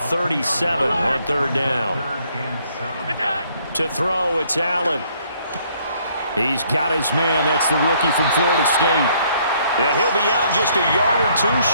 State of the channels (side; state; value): both; inverted; correlation -0.66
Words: on third down. To throw, it's Allen. He's got his man. That's the rookie from Florida State. Yeah, he'll be out just a yard or two